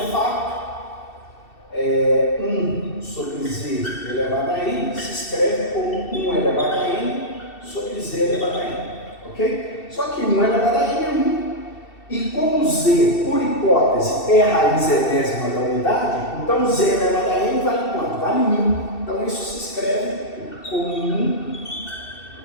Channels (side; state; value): right; late; 2.7 ms